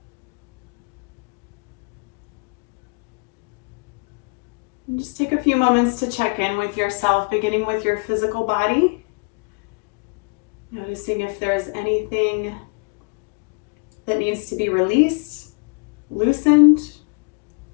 And just take a few moments to check in with yourself, beginning with your physical body. Noticing if there's anything that needs to be released, loosened,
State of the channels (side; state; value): right; quieter; 34.7 dB